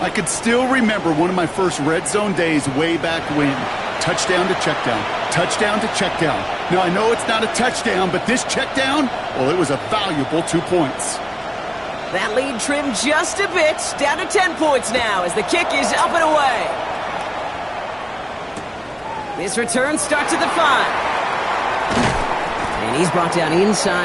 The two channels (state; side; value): identical; both; correlation 1.00